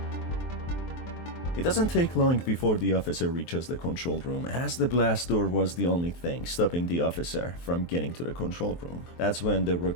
It doesn't take long before the officer reaches the control room, as the blast door was the only thing stopping the officer from getting to the control room. That's when the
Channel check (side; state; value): right; late; 23 ms